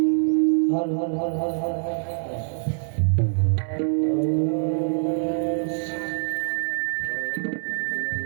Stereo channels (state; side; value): silent; left; 62 dB below the other